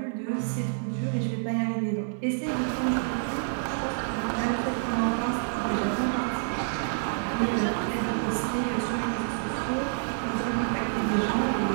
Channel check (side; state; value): left; silent; digital silence